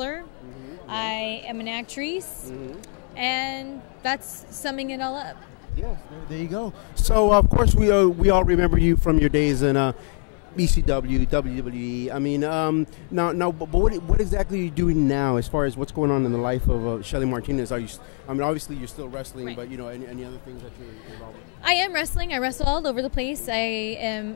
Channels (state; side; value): quieter; right; 38.4 dB